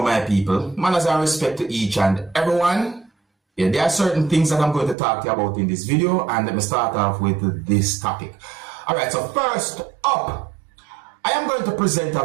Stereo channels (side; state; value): left; drops out; at 5.0 s